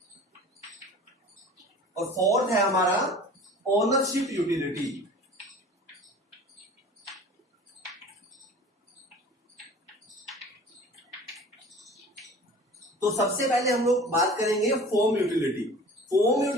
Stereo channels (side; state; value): both; normal; correlation 0.42